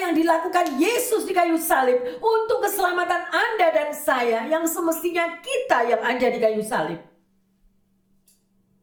dilakukan Yesus di kayu salib untuk keselamatan Anda dan saya, yang semestinya kita yang ada di kayu salib.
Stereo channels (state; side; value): identical; both; correlation 1.00